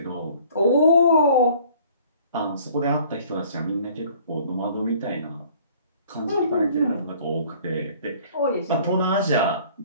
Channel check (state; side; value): inverted; both; correlation -0.54